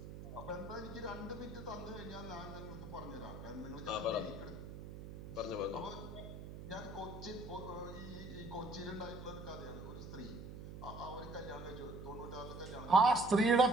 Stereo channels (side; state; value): right; noise; hum, 10 dB below the sound